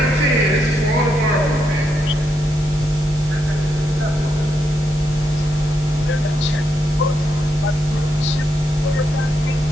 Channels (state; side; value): normal; both; correlation 0.81